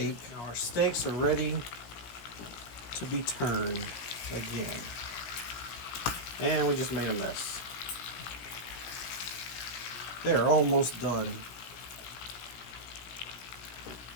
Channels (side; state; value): right; late; 17 ms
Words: Now our steaks are ready to be turned again. And we just made a mess. They're almost done.